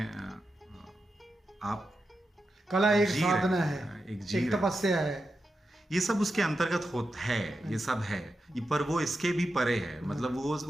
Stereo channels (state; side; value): normal; both; correlation 0.89